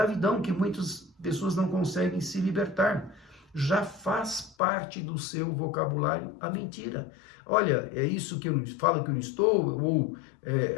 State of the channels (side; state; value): right; drops out; at 4.5 s